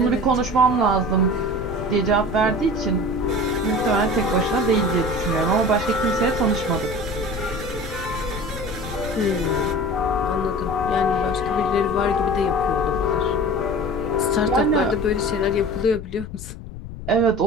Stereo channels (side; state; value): left; noise; rumble, 12 dB below the sound